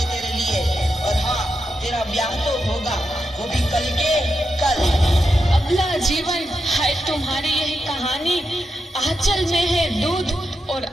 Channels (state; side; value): normal; both; correlation 0.87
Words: तेरे लिए। और हाँ, तेरा ब्याह तो होगा, वो भी कल के कल। अगला जीवन है तुम्हारी यही कहानी। आंचल में है दूध और